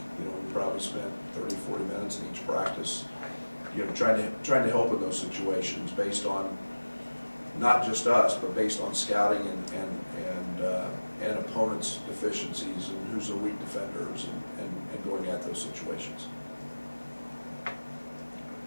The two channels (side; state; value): both; inverted; correlation -1.00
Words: You know, we probably spent 30-40 minutes in each practice, you know, trying to help in those situations based on not just us, but based on scouting and opponents' deficiencies and who's the weak defenders, and going at those situations.